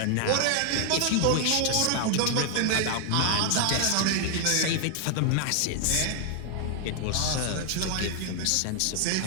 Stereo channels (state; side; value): different; both; correlation 0.00